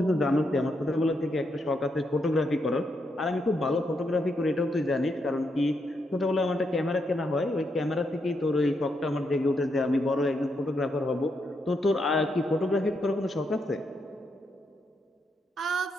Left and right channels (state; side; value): normal; both; correlation 0.80